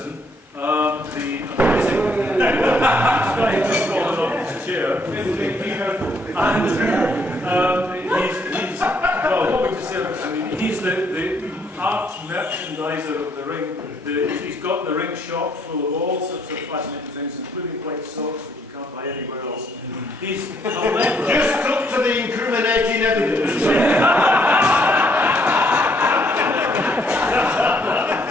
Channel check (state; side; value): normal; both; correlation 0.69